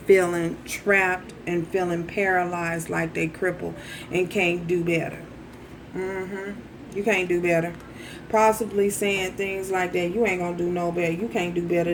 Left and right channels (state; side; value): identical; both; correlation 1.00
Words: feeling trapped and feeling paralyzed, like they crippled and can't do better. You can't do better. Possibly saying things like that. You ain't gonna do no better. You can't do better